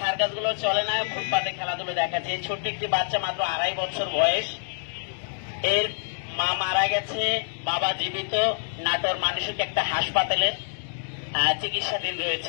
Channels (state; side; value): silent; right; digital silence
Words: সার্কাস গুলো চলে না, ফুটপাতে খেলাধুলো দেখাচ্ছে। এই ছোট্ট একটি বাচ্চা, মাত্র 2.5 বছর বয়স, এর মা মারা গেছে, বাবা জীবিত। নাটোর মানসিক একটা হাসপাতালের চিকিৎসাধীন